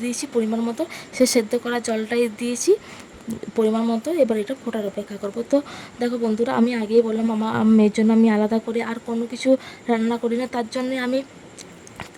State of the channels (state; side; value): identical; both; correlation 1.00